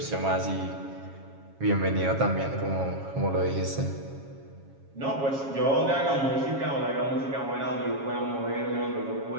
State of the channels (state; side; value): late; left; 7.3 ms